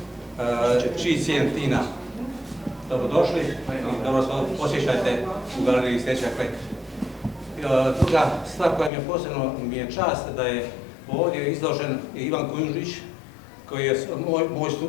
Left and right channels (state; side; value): drops out; right; at 8.9 s